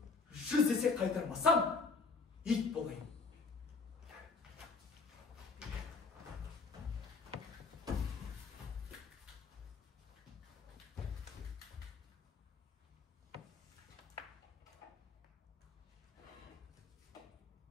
100 есе қайтармасам, ит болайын.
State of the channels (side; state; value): right; quieter; 4.4 dB